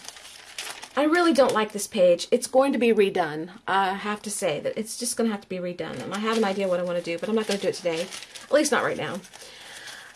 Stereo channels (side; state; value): both; identical; correlation 1.00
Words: really don't like this page. It's going to be redone. I have to say that it's just going to have to be redone, and I have an idea what I want to do, but I'm not going to do it today. At least not right now.